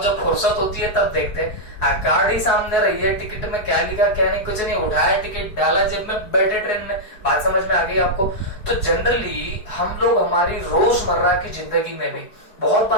जब फुर्सत होती है तब देखते। कार्ड ही सामने रही है, टिकट में क्या लिखा क्या नहीं, कुछ नहीं, उठाया टिकट डाला जेब में, बैठे ट्रेन में। बात समझ में आ गई आपको? तो जनरली हम लोग हमारी रोजमर्रा की जिंदगी में भी बहुत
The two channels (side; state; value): right; late; 4.6 ms